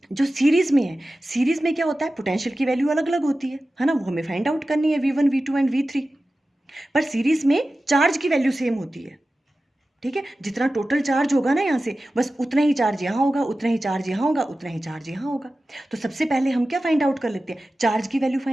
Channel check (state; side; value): normal; both; correlation 0.95